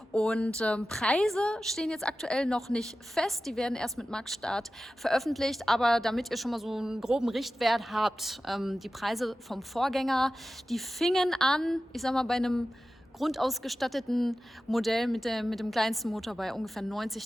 Und Preise stehen jetzt aktuell noch nicht fest. Die werden erst mit Marktstart veröffentlicht. Aber damit ihr schon mal so einen groben Richtwert habt, die Preise vom Vorgänger, die fingen an, ich sag mal, bei einem grundausgestatteten Modell mit dem kleinsten Motor bei ungefähr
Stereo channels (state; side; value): normal; both; correlation 0.94